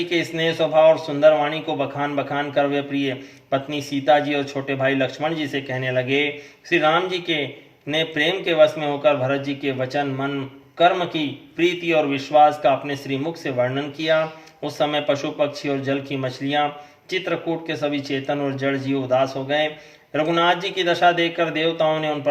के स्नेह स्वभाव और सुंदर वाणी को बखान बखान कर वे प्रिय पत्नी सीता जी और छोटे भाई लक्ष्मण जी से कहने लगे। श्री राम जी के ने प्रेम के वश में होकर भरत जी के वचन मन कर्म की प्रीति और विश्वास का अपने श्रीमुख से वर्णन किया। उस समय पशु पक्षी और जल की मछलियां चित्रकूट के सभी चेतन और जड़ जीव उदास हो गए। रघुनाथ जी की दशा देखकर देवताओं ने उन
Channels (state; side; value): identical; both; correlation 1.00